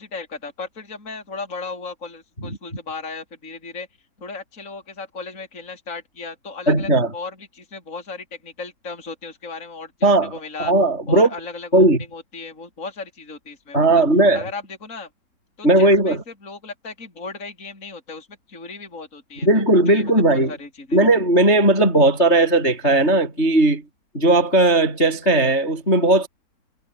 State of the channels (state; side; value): late; right; 3.3 ms